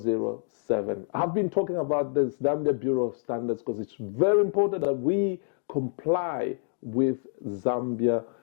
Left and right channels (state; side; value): silent; right; digital silence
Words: I've been talking about the Zambia Bureau of Standards because it's very important that we comply with Zambia